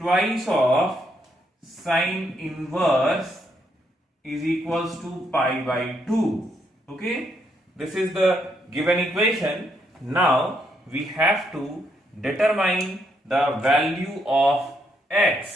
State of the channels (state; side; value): normal; both; correlation 0.76